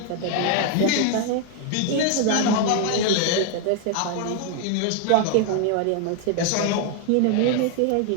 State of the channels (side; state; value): both; different; correlation 0.01